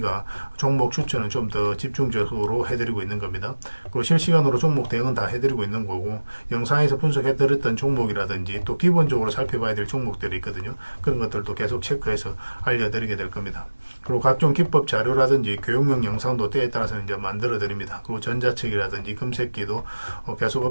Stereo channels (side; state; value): both; inverted; correlation -1.00